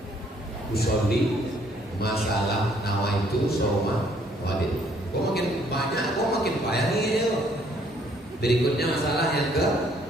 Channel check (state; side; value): normal; both; correlation 0.64